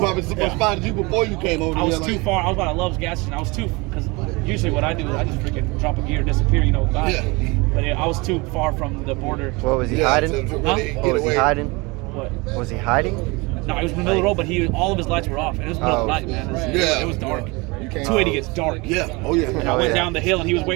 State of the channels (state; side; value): quieter; left; 25.9 dB